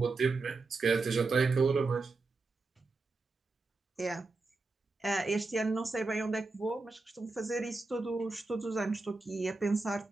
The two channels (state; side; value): quieter; left; 3.6 dB